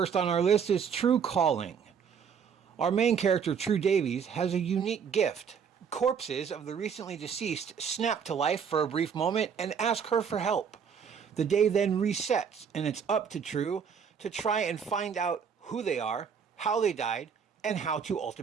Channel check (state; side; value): quieter; left; 7.0 dB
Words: on our list is Tru Calling. Our main character, True Davies, has a unique gift. Corpses of the recently deceased snap to life for a brief moment and ask her for help. The day then resets, and it's up to True to try and find out who they are, how they died, and how to